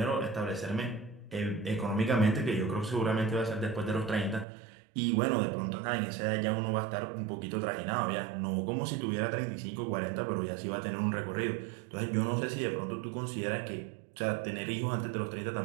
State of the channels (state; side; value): drops out; left; at 4.5 s